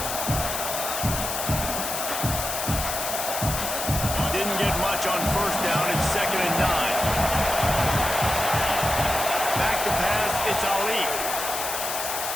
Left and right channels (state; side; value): noise; left; hiss, 3 dB below the sound